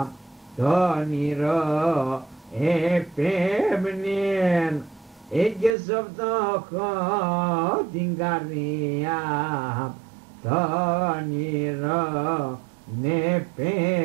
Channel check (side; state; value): left; drops out; at 5.8 s